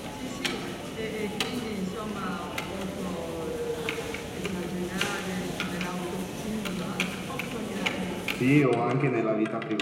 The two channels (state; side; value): identical; both; correlation 1.00